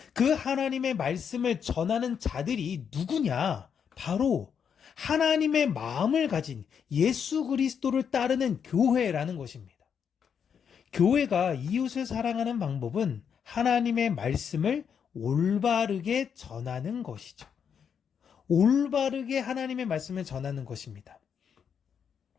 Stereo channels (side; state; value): right; quieter; 7.4 dB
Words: 그 하나님의 말씀을 전하는 자들이 누구냐? 바로 하나님의 마음을 가진 예수 그리스도를 따르는 교회라는 것입니다. 교회가 이웃을 사랑하는 방법은 하나님의 말씀을 올바르게 전하는 것이죠. 올바르게 하나님의 말씀을 전하는 것입니다.